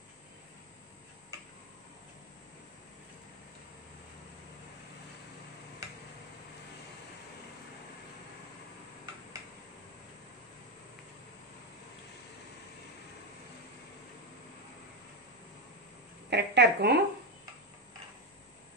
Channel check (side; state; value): both; normal; correlation 0.09